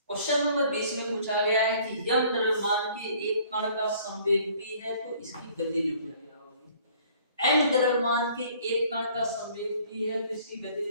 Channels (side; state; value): both; inverted; correlation -0.56